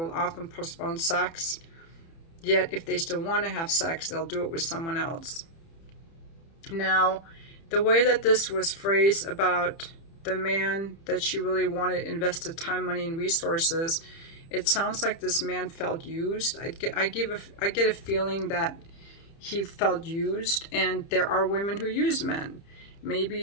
often postpone sex. Yet if they still want to have sex, they'll do it with someone else. Now, the way that this was phrased about the man that she really wanted invested time, money, and resources, it sounds like this man felt used. I get a feeling that he felt used, and there are women who use men.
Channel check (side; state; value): right; late; 30 ms